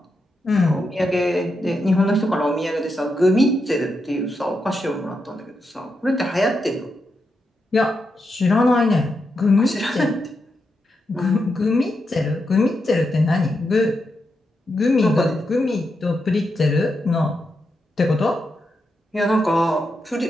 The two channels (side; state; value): both; normal; correlation 0.85